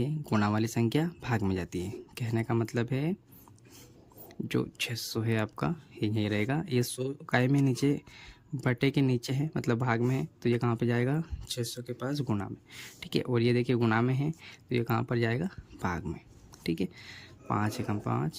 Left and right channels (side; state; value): both; identical; correlation 1.00